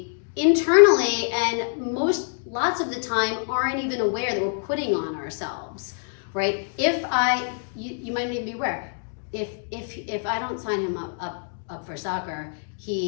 internally and lots of the time aren't even aware that we're putting on ourselves, right? You might even be aware, if I don't sign him up for soccer,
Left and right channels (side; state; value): right; silent; digital silence